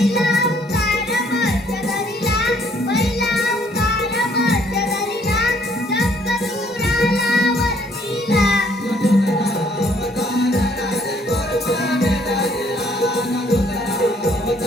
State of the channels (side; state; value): both; normal; correlation 0.64